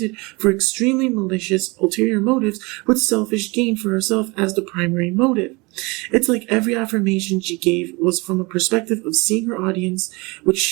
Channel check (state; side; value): quieter; left; 26.2 dB